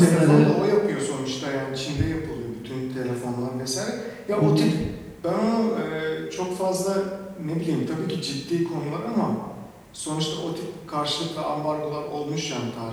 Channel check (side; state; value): both; identical; correlation 1.00